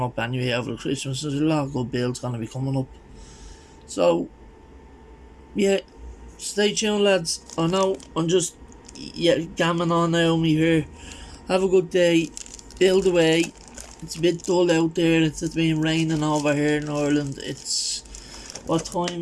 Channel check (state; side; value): identical; both; correlation 1.00